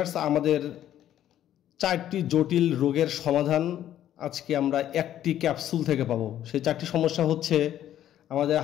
আমাদের 4টি জটিল রোগের সমাধান আজকে আমরা একটি ক্যাপসুল থেকে পাবো। সেই 4টি সমস্যা হচ্ছে আমাদের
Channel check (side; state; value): right; quieter; 11.6 dB